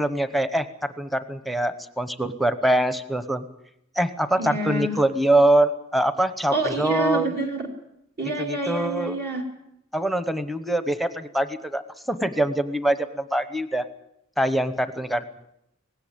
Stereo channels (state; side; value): normal; both; correlation 0.79